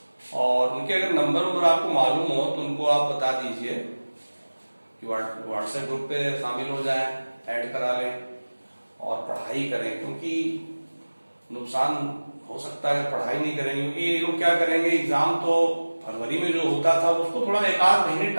और उनके अगर नंबर आपको मालूम हो तो उनको आप बता दीजिए कि व्हाट्सएप ग्रुप पे शामिल हो जाए, ऐड करा लें और पढ़ाई करें, क्योंकि नुकसान हो सकता है पढ़ाई नहीं करेंगे। क्योंकि ये लोग क्या करेंगे, एग्जाम तो फरवरी में जो होता था उसको थोड़ा एक आध महीने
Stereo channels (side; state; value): both; inverted; correlation -1.00